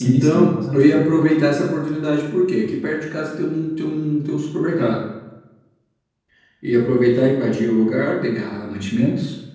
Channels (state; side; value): identical; both; correlation 1.00